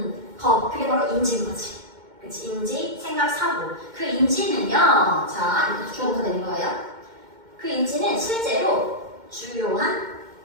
것, 그게 바로 인지인 거지. 그치? 인지, 생각, 사고. 그 인지는요, 자, 이렇게 주어가 되는 거예요. 그 인지는 실제로 주요한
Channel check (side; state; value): left; late; 2.1 ms